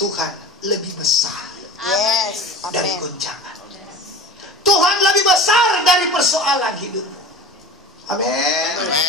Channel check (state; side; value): normal; both; correlation 0.36